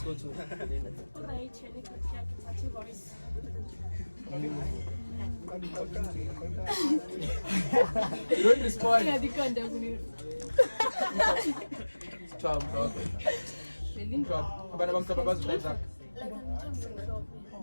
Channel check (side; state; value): both; inverted; correlation -1.00